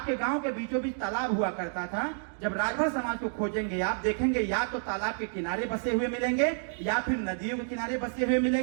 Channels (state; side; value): silent; left; digital silence